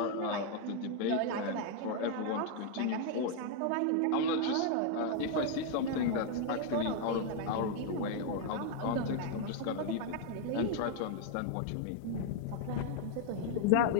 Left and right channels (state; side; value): different; both; correlation 0.00